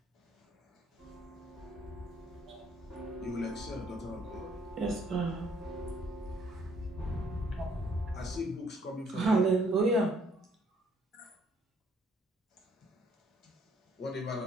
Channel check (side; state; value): both; normal; correlation 0.65